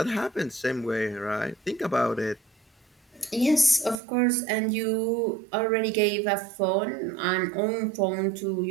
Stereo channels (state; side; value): drops out; left; at 4.0 s